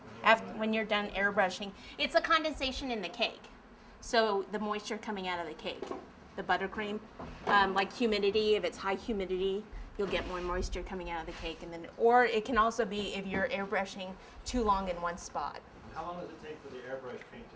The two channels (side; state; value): both; identical; correlation 1.00